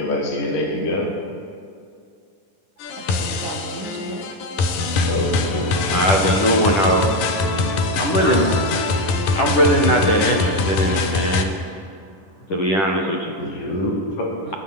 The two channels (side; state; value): right; late; 11 ms